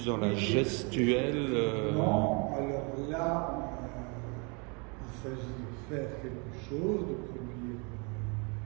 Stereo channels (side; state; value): left; quieter; 32.8 dB